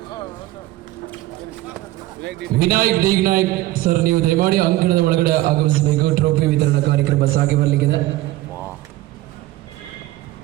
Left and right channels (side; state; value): left; quieter; 16.8 dB